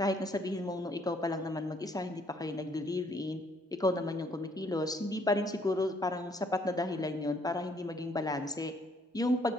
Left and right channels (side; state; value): both; normal; correlation 0.65